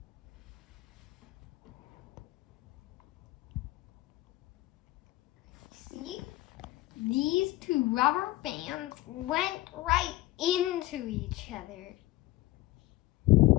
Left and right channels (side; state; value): right; quieter; 17.6 dB